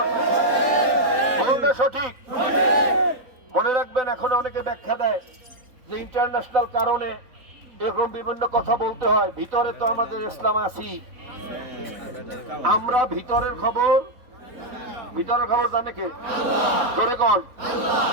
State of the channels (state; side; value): late; left; 3.9 ms